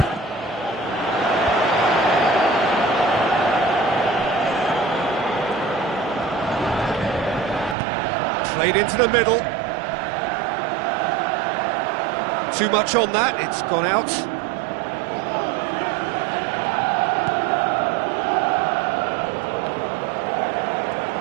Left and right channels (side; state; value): left; drops out; at 7.8 s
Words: Played into the middle. Too much on that, it's gone out.